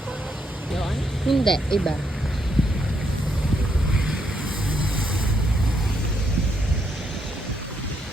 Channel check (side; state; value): both; normal; correlation 0.77